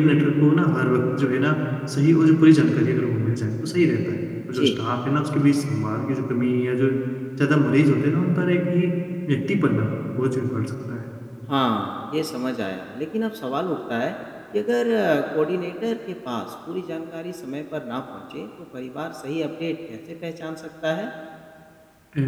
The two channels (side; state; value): both; identical; correlation 1.00